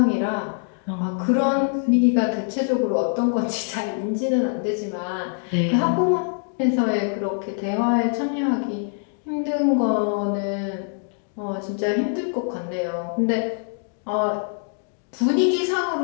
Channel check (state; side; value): silent; right; 63 dB below the other